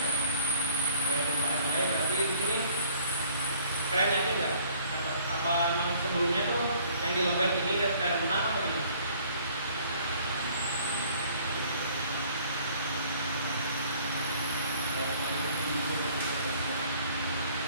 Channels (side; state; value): both; inverted; correlation -0.57